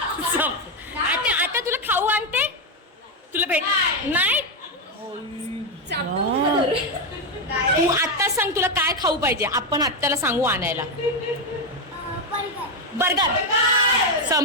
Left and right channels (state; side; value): normal; both; correlation 0.06